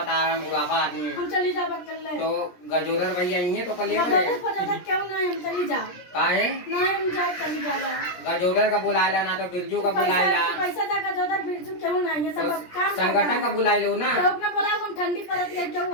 तारा बुढ़ापा आदमी हम चली जावा कर ले तो गजोदर भैया ये तो कल गजोदर पता क्यों ना हम चली जा काहे ना हम जा चली जावा गजोदर का बुलाएला ना तो बिरजू का बुलाएला पैसा दा गजोदर बिरजू क्यों ना ये सब तो काम संगठन का बुलाई लो ना तो अपना बोला हम ठंडी पड़त है क्यों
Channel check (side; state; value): right; late; 17 ms